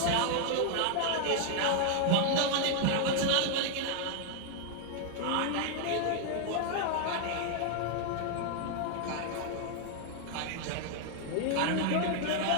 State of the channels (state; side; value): different; both; correlation 0.00